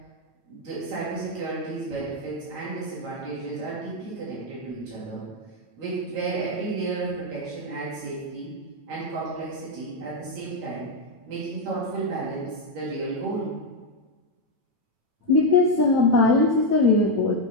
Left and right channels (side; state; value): left; late; 8.9 ms